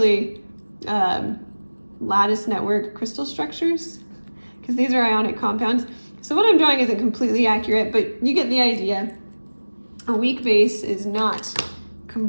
lattice network crystal structures, because these are ionic compounds. So what I'm drawing isn't completely accurate, but you get the idea. A weak base is not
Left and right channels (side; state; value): both; inverted; correlation -1.00